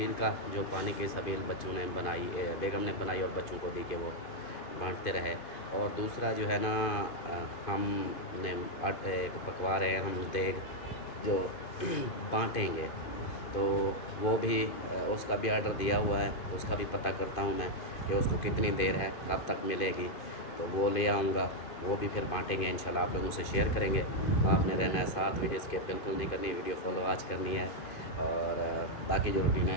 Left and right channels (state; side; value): late; right; 2.5 ms